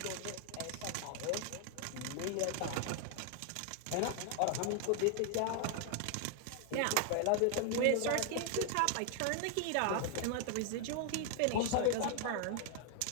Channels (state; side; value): different; both; correlation 0.00